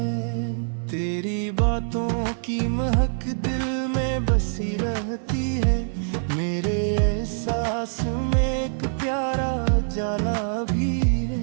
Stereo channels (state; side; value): silent; left; 62 dB below the other